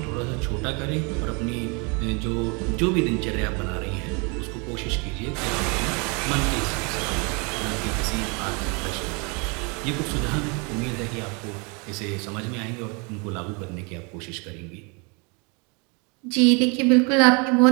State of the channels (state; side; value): quieter; left; 32.1 dB